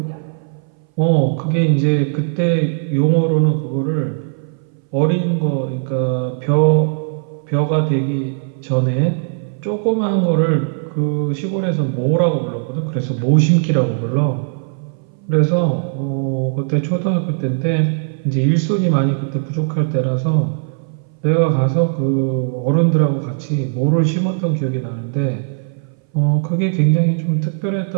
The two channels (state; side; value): silent; left; 61 dB below the other